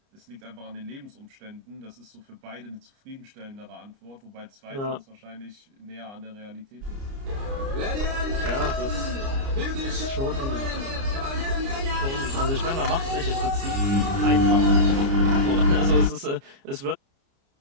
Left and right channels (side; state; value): left; late; 29 ms